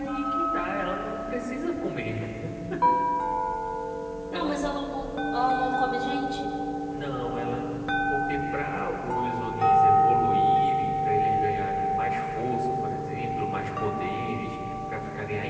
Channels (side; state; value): both; identical; correlation 1.00